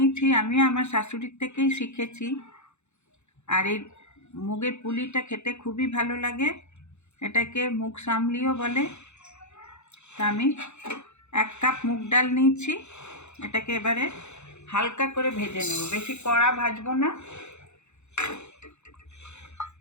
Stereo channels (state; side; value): late; right; 0.82 ms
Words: আমি আমার শাশুড়ির থেকেই শিখেছি। আর এই মুগের পুলিটা খেতে খুবই ভালো লাগে। এটাকে মুগ সামলিও বলে। তা আমি 1 কাপ মুগ ডাল নিয়েছি। এটাকে এবারে হালকা করে ভেজে নেব, বেশি কড়া ভাজবো না।